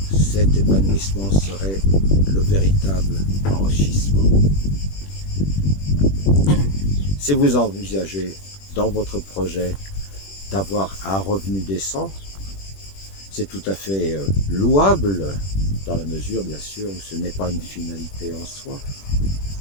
cet épanouissement serait le véritable enrichissement. Si vous envisagez dans votre projet d'avoir un revenu décent, c'est tout à fait louable, dans la mesure bien sûr où ce n'est pas une finalité en soi.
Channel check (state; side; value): late; right; 21 ms